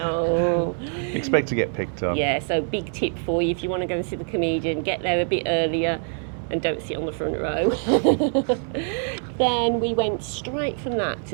Expect to get picked up. Yeah, so big tip for you, if you want to go and see the comedian, get there a bit earlier and don't sit on the front row. Then we went straight from that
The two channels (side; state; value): left; silent; 59 dB below the other